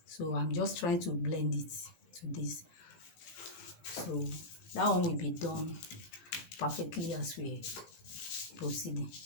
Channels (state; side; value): late; right; 19 ms